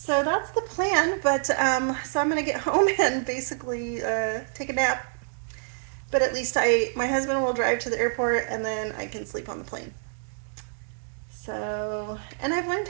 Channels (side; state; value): left; silent; digital silence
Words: that's the plan, but so I'm gonna get home and basically take a nap. But at least my husband will drive to the airport, and then I can sleep on the plane. So, and I've learned